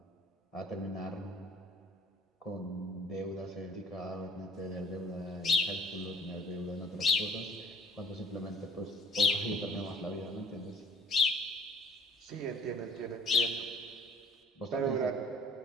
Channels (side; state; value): both; normal; correlation 0.54